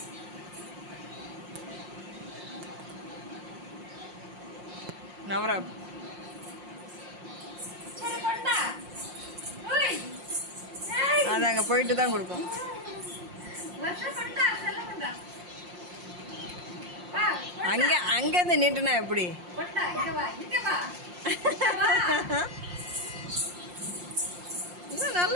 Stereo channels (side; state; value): left; late; 5.6 ms